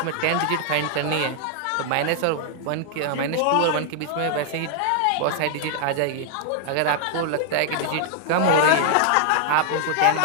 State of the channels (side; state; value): both; different; correlation 0.00